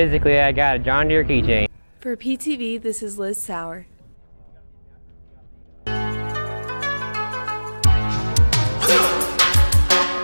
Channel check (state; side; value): inverted; both; correlation -1.00